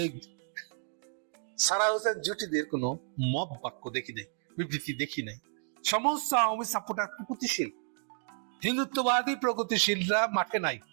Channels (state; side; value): silent; left; 57 dB below the other